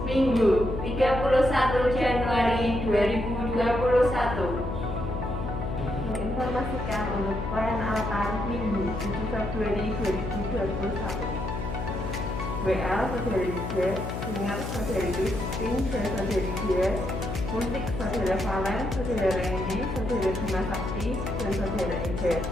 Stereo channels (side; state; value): left; noise; hum, 5 dB below the sound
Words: Minggu 31 Januari 2021. Menginformasikan untuk pelayanan altar Minggu 7 Februari 2021. WA Saudari J, Dengar Saudari Christine dan Saudari Dia, Musik Saudara Valen, Saudara Randy, Saudara Bima Sakti, dan Saudara Eja,